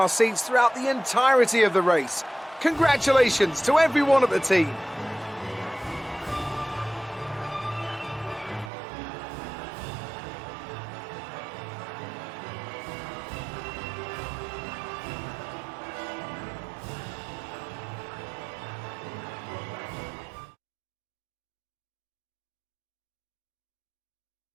seats throughout the entirety of the race. Congratulations to everyone at the team.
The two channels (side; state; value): left; drops out; at 8.7 s